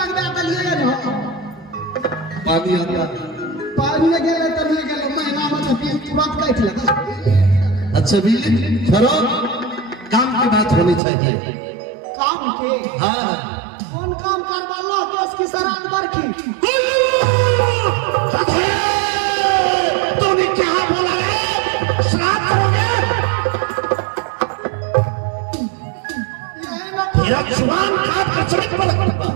दलिए न पानी आता पानी गेले त नहीं गेले महीना में तो बिल तुरंत काट लगा। अच्छा बिजली छोड़ो, काम की बात होनी चाहिए। काम के हाँ कौन काम करवा लो केस की सराद बरखी तूने क्या बोला है? श्राद्ध करोगे? तेरा जुबान काट कर चढ़ पड़ूंगा,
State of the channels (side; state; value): left; drops out; at 11.0 s